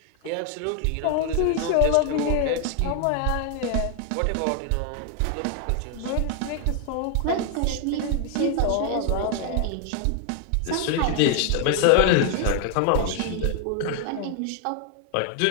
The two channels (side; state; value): both; different; correlation 0.00